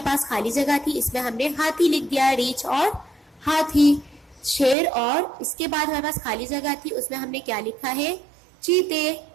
پاس خالی جگہ تھی، اس میں ہم نے ہاتھی لکھ دیا، ریچھ اور ہاتھی. شیر اور اس کے بعد ہمارے پاس خالی جگہ تھی، اس میں ہم نے کیا لکھا ہے؟ چیتے.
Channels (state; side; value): drops out; left; at 4.8 s